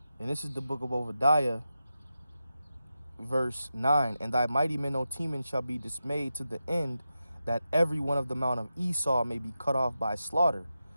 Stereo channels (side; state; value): both; inverted; correlation -0.90